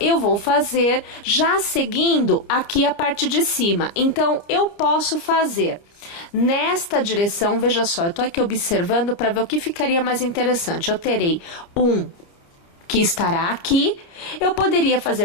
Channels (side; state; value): right; late; 30 ms